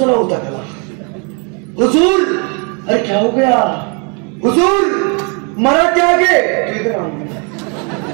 होता त्याला. हुजूर, अरे क्या हो गया? हुजूर, मराठे आ गए. इधर आओ,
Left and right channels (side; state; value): left; quieter; 35.3 dB